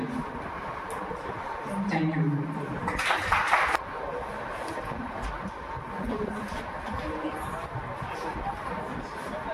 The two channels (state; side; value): identical; both; correlation 1.00